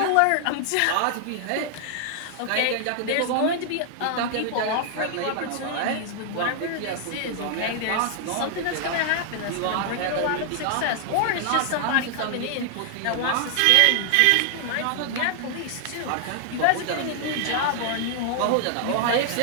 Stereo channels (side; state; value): both; different; correlation 0.00